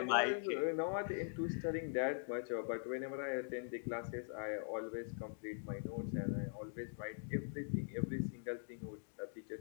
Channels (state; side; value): silent; right; digital silence